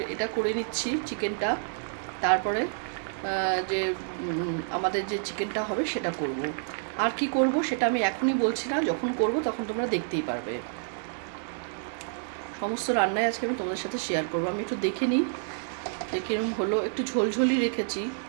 এটা করে নিচ্ছি চিকেনটা, তারপরে যে আমাদের যে চিকেনটা হবে সেটা করব। আর কি করব সেটা আমি এখনই বলছি না, যখন করব তখন তোমরা দেখতেই পারবে। সমস্ত রান্নাই আজকে আমি তোমাদের সাথে শেয়ার করব। আমি একটু দেখে নিই যে কিরকম হলো। একটু ঝোলঝোলি রেখেছি।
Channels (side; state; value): left; silent; digital silence